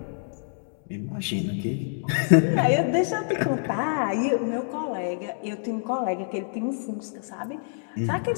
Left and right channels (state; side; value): silent; right; digital silence